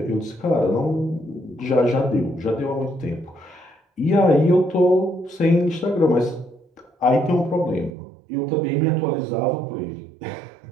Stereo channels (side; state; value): left; drops out; at 7.9 s